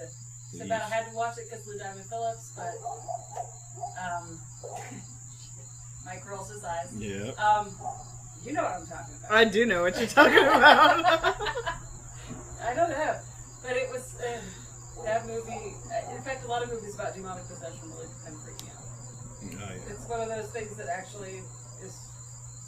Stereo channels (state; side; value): identical; both; correlation 1.00